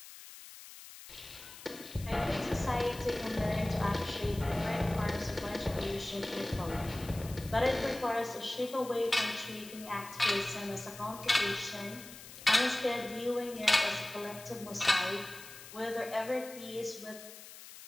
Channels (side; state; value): left; noise; hiss, 15 dB below the sound